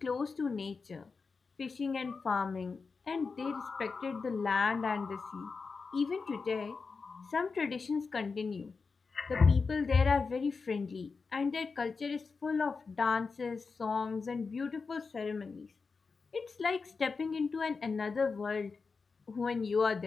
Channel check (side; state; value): right; quieter; 4.7 dB